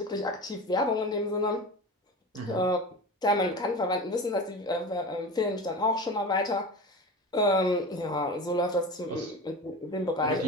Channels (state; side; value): normal; both; correlation 0.30